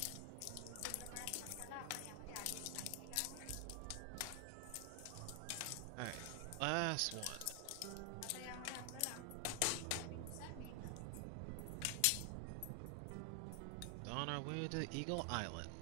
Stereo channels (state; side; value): different; both; correlation 0.00